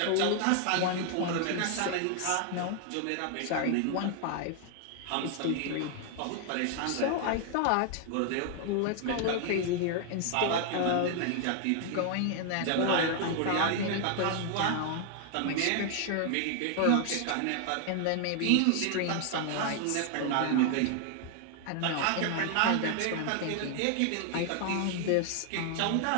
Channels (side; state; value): both; different; correlation 0.00